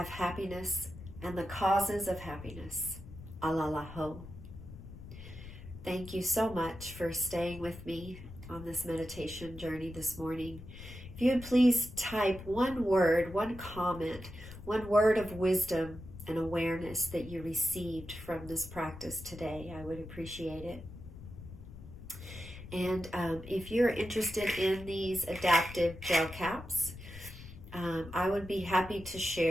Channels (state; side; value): noise; left; rumble, 14 dB below the sound